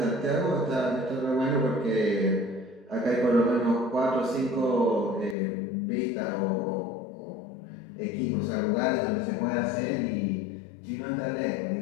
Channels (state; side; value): drops out; right; at 5.4 s